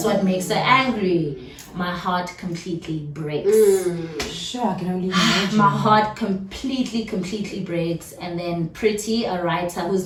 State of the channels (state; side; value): identical; both; correlation 1.00